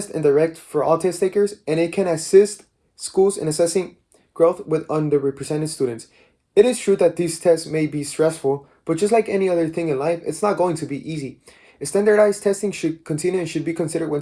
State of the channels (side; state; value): both; identical; correlation 1.00